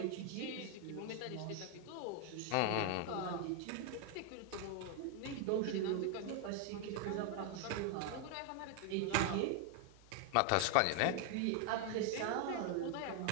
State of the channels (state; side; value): different; both; correlation 0.01